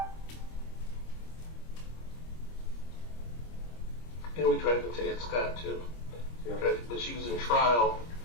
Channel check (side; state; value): right; late; 25 ms